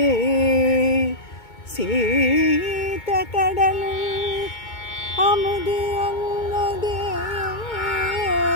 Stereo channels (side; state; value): right; late; 2.2 ms